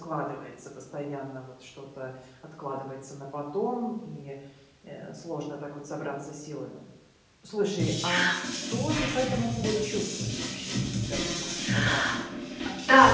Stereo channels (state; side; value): identical; both; correlation 1.00